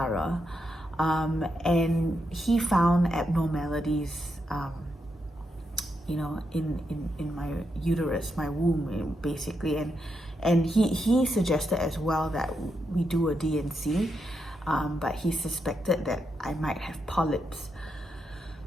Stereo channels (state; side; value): normal; both; correlation 0.83